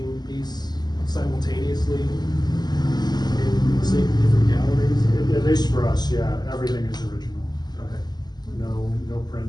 piece simultaneously in the same different galleries? At least for us, yeah, everything is original. Okay. No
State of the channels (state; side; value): late; right; 0.20 ms